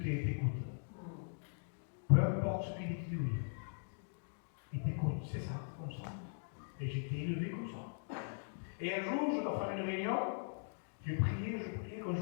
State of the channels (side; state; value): right; silent; digital silence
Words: Peu importe ce qu'il dit, tu dis oui. Il t'écoute, c'est ça, comme ça. Et j'ai été élevé comme ça. Et un jour, je dois faire une réunion, je priais, quand